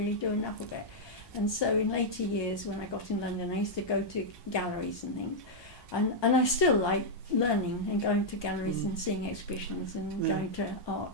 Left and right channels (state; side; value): late; right; 1.2 ms